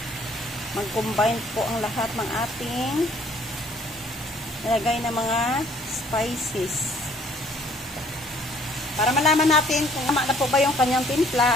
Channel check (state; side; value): normal; both; correlation 0.60